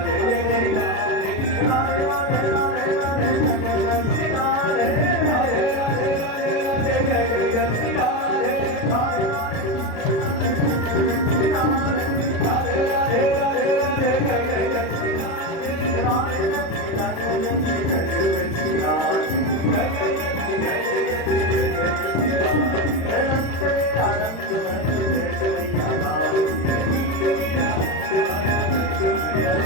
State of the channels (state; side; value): late; right; 36 ms